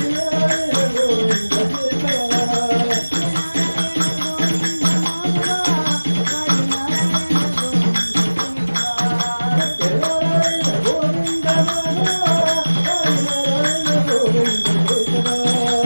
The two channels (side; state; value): both; inverted; correlation -1.00